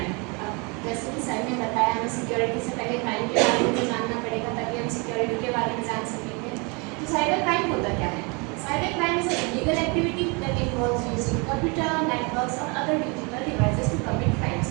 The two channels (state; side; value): quieter; left; 30.6 dB